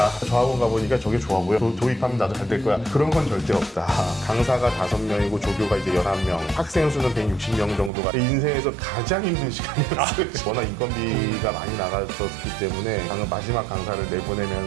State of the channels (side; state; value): left; drops out; at 7.9 s